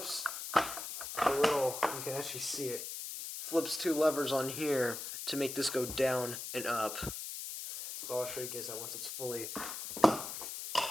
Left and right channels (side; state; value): left; noise; hiss, 7 dB below the sound